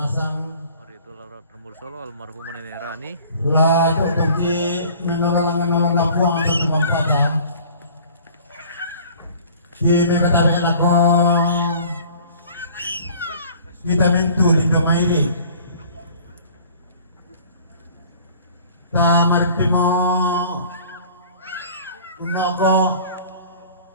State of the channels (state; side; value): inverted; both; correlation -0.49